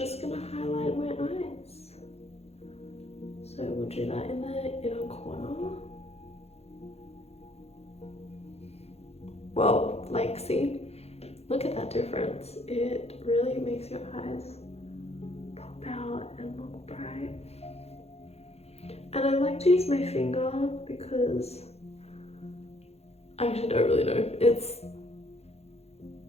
gonna highlight my eyes. So we'll do that in the inner corner. Whoa, like see, look at that difference. It really makes your eyes pop out and look bright. And I like to use my finger because I actually don't really know. It's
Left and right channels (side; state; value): right; late; 0.30 ms